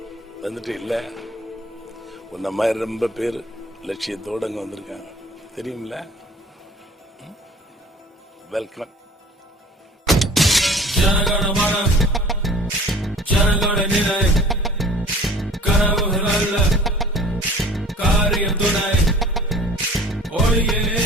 வந்துட்டு இல்ல உன்ன மாதிரி ரொம்ப பேர் லட்சியத்தோடு அங்கே வந்திருக்காங்க தெரியுமில்ல. வெல்கம். ஜனகணமன ஜனகண நிலை கனவுகள் அல்ல காரியம் துணை ஒளியே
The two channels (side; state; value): both; normal; correlation 0.47